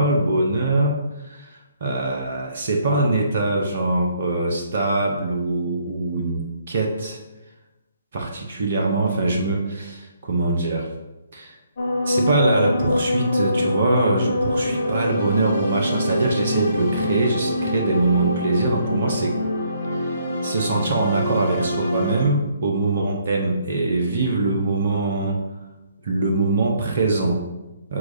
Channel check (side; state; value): both; inverted; correlation -0.69